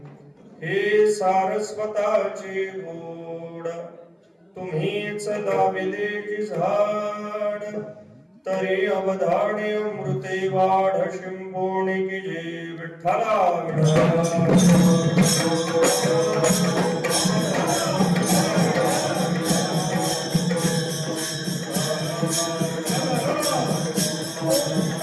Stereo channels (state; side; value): identical; both; correlation 1.00